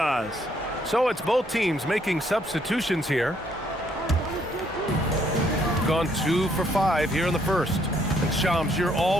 So it's both teams making substitutions here. Gone 2 for 5 here in the first. And Shams, you're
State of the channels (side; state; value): both; normal; correlation 0.69